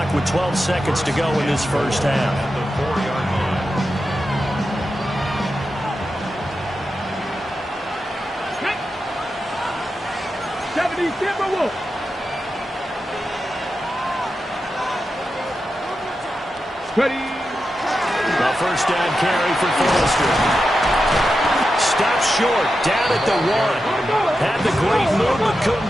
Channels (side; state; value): both; normal; correlation 0.90